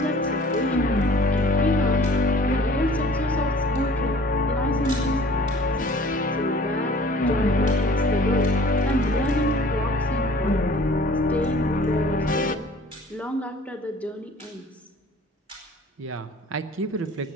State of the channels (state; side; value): normal; both; correlation 0.50